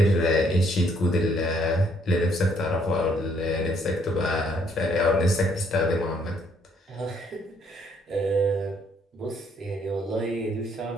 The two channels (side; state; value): both; normal; correlation 0.67